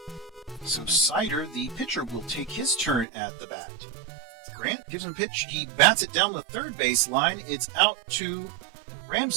So Sider, the pitcher, will take his turn at the bat. Grant gives him a pitch. He bats it down the third base line. It's out to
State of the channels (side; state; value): left; drops out; at 3.1 s